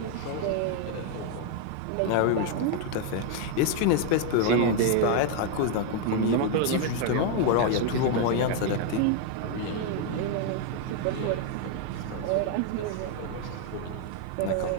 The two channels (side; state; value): both; different; correlation 0.00